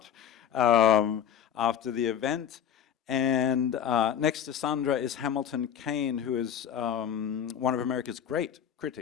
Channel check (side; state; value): right; quieter; 9.0 dB